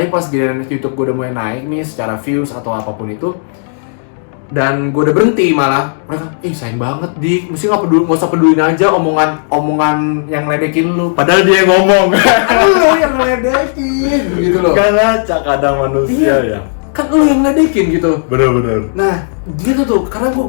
pas giliran YouTube gue udah mulai naik nih, secara views atau apapun itu, dan gue udah berhenti malah, mereka, sayang banget Dik, mesti nggak usah pedulin aja omongan yang ledekin lu. Padahal dia yang ngomong. Lu yang ledekin, gitu loh. Kan ngaca kadang manusia ya. Kan lu yang ledekin gitu. Bener-bener. Nah, gitu tuh, karena gue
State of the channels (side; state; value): right; silent; digital silence